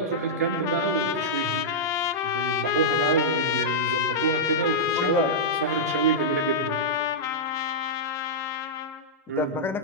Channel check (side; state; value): both; normal; correlation -0.09